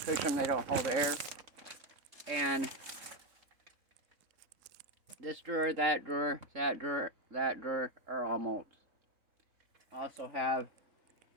them, they don't hold air. And this drawer, that drawer, that drawer, that drawer are all molds. I also have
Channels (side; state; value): left; late; 3.7 ms